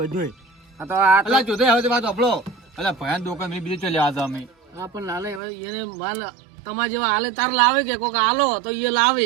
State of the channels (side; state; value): left; drops out; at 5.4 s